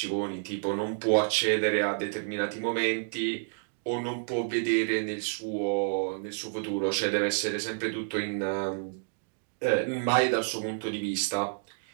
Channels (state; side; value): silent; left; digital silence